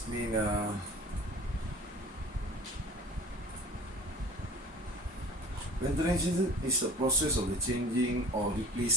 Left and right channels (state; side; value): normal; both; correlation 0.42